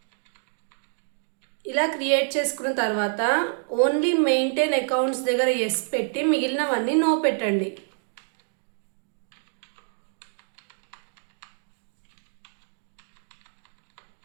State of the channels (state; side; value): silent; left; digital silence